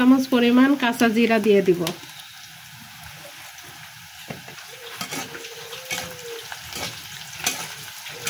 পরিমাণ কাঁচা জিরা দিয়ে দিব।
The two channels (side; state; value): both; identical; correlation 1.00